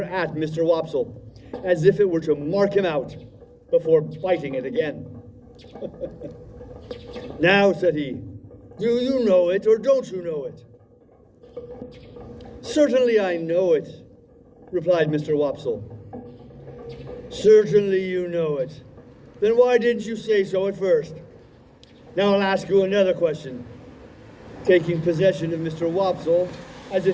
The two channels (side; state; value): both; identical; correlation 1.00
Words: at Mr. Wopsle, as if it were to mark him out, before biting it again. "Now," said he, "do you know it or don't you know it?" "Certainly I know it," replied Mr. Wopsle. "Certainly you know it. Then why didn't you say so at first? Now I'll ask you another question." Taking possession of Mr. Wopsle as